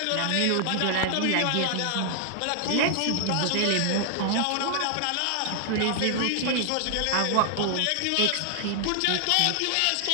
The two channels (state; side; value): different; both; correlation 0.00